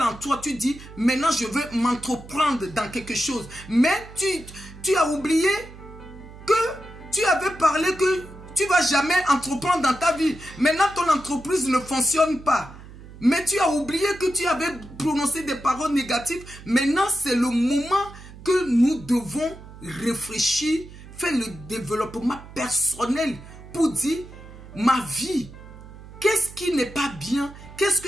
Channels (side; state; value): right; noise; hum, 17 dB below the sound